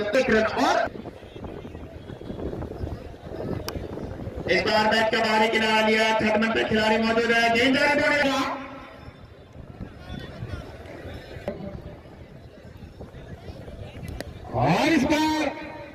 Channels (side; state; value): both; identical; correlation 1.00